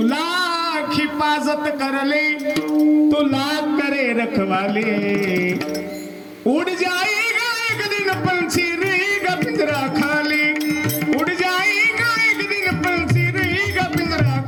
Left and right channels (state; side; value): identical; both; correlation 1.00